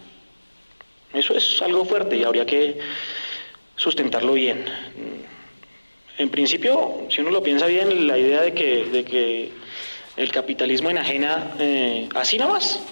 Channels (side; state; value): both; inverted; correlation -1.00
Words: Eso es algo fuerte y habría que sustentarlo bien. En principio, si uno lo piensa bien, la idea de que el capitalismo enajena así nomás,